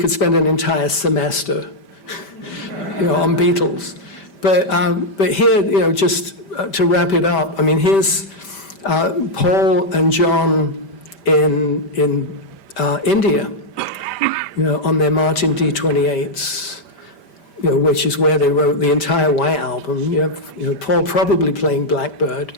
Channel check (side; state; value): right; late; 5.1 ms